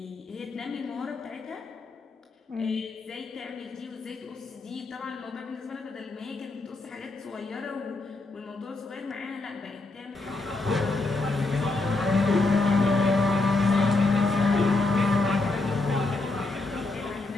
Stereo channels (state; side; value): quieter; right; 3.3 dB